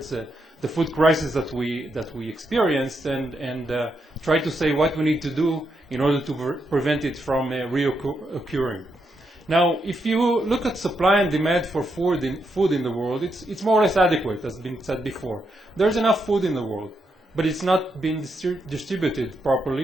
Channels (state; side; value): normal; both; correlation 0.81